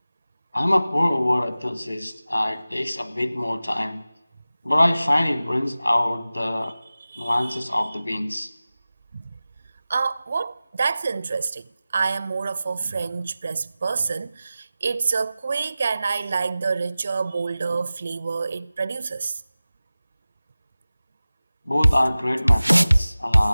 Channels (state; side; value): inverted; both; correlation -0.96